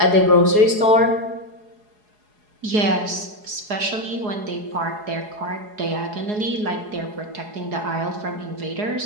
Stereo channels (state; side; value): late; left; 4.8 ms